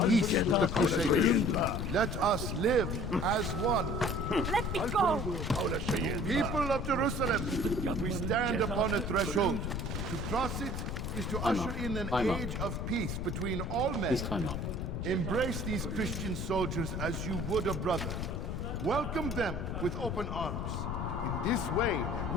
peace with the Crusaders. Let us live as one. Let me go! People of Jerusalem, we stand upon a threshold. To cross it is to usher in an age of peace between all men. Embrace these Christian soldiers as you would a brother. Welcome them with open arms. In this way,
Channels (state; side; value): noise; left; rumble, 3 dB below the sound